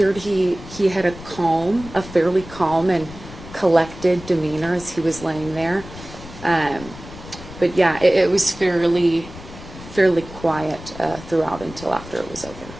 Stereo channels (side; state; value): left; noise; rumble, 15 dB below the sound